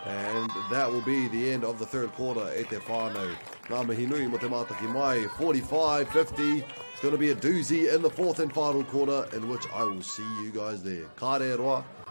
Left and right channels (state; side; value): inverted; both; correlation -1.00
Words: And that will be the end of the third quarter e te whānau. Ngā mihi nui mo te mātaki mai, 45-50. It's going to be a doozy in the fourth and final quarter, in which I will see you guys there. Ka re roa,